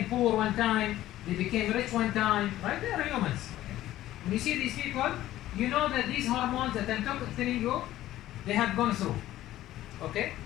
poor one time. They became rich one time, right? They are humans. Okay? When you see these people, you know that these hormones that I'm telling you, they have gone through. Okay?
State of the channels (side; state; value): right; quieter; 14.3 dB